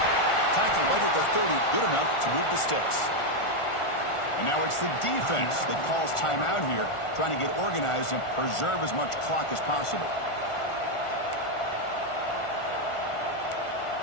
Tackled right at the 30. Good enough to move the sticks. And now it's the defense that calls timeout here, trying to get organized and preserve as much clock as possible.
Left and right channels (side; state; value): right; late; 1.4 ms